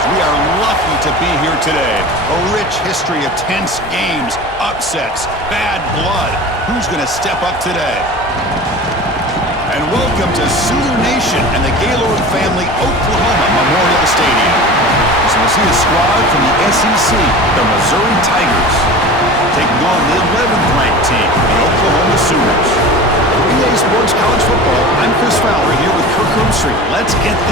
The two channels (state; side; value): normal; both; correlation 0.35